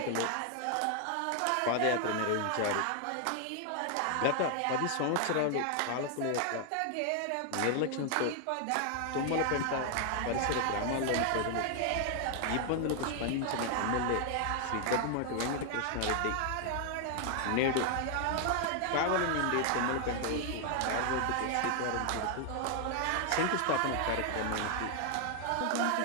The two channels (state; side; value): different; both; correlation 0.00